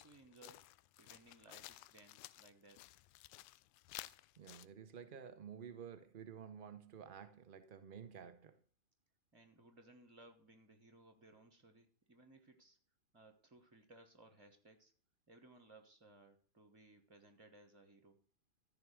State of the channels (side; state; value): left; late; 2.4 ms